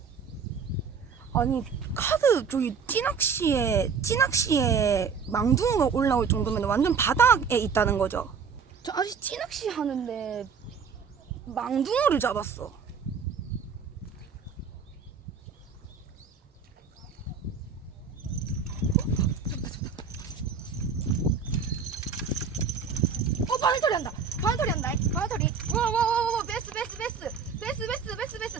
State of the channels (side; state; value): left; quieter; 5.9 dB